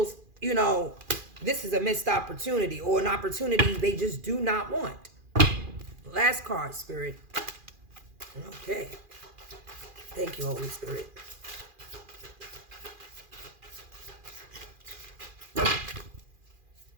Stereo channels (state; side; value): late; left; 2.4 ms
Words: this is a missed opportunity, or an opportunity they just do not want. Last card, Spirit. Okay. Thank you, Holy Spirit.